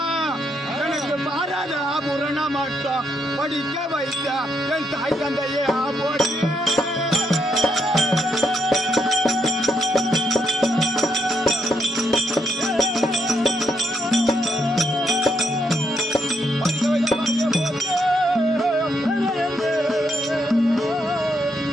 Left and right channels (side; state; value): both; normal; correlation 0.77